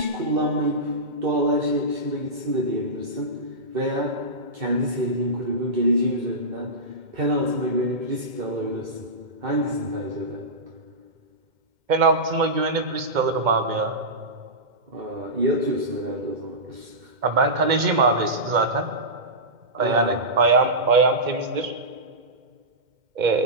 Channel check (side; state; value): left; late; 2.1 ms